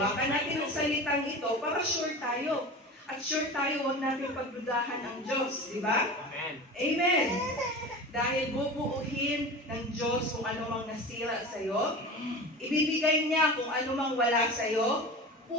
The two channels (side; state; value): both; normal; correlation 0.33